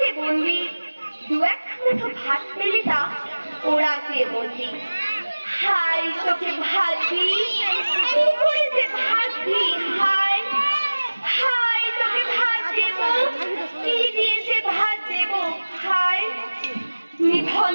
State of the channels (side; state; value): both; inverted; correlation -1.00